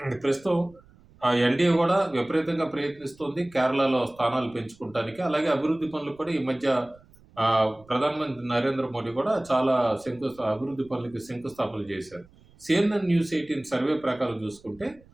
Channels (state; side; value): noise; right; rumble, 27 dB below the sound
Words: ప్రస్తుతం ఎన్‌డీఏ కూడా విపరీతంగా ప్రయత్నిస్తోంది కేరళలో స్థానాలు పెంచుకుంటానికి. అలాగే అభివృద్ధి పనులు కూడా ఈ మధ్య ప్రధానమంత్రి నరేంద్ర మోడీ కూడా చాలా అభివృద్ధి పనులకి శంకుస్థాపనలు చేశారు. సీఎన్ఎన్ న్యూస్ 18 సర్వే ప్రకారం చూసుకుంటే